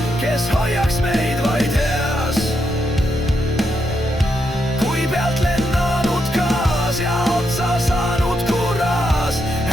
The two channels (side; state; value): both; normal; correlation 0.82